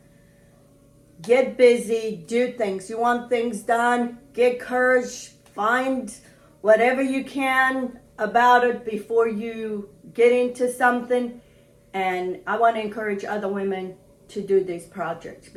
Get busy, do things. You want things done, get courage, find whatever you can about it before you get into something. And I want to encourage other women to do these projects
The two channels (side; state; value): both; identical; correlation 1.00